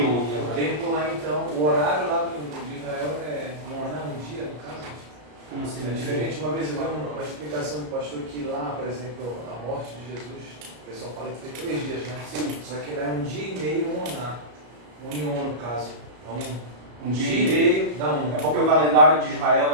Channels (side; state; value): left; late; 33 ms